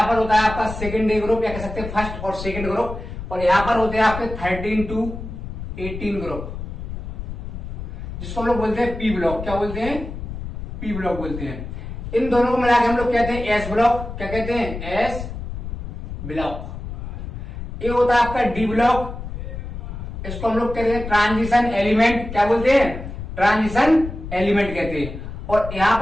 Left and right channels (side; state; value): left; noise; rumble, 8 dB below the sound